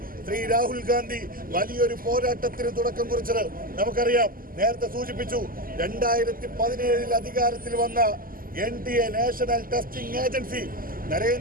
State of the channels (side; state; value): left; late; 0.41 ms